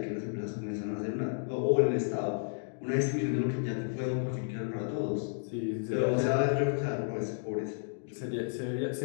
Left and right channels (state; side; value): silent; right; digital silence